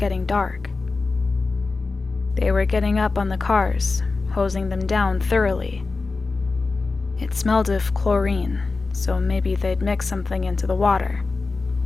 dark. They were getting up on the cars, hosing them down thoroughly. It smelled of chlorine, so maybe they'd mix something into the water.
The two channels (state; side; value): quieter; right; 3.9 dB